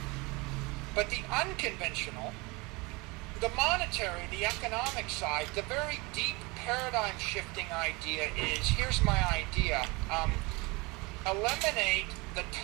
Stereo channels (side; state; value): left; quieter; 25.7 dB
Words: But the unconventional, the monetary, the economic side, the very deep paradigm shifting idea is, here's my idea, eliminate the